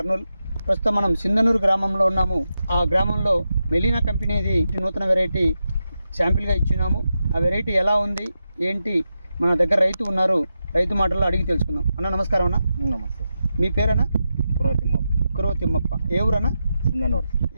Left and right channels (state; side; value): inverted; both; correlation -0.88